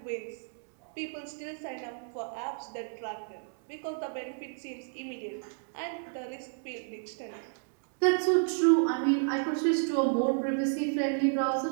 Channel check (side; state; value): left; silent; digital silence